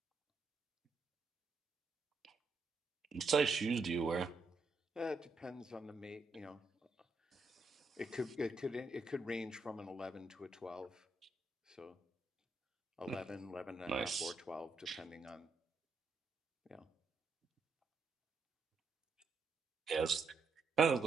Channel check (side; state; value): left; quieter; 3.7 dB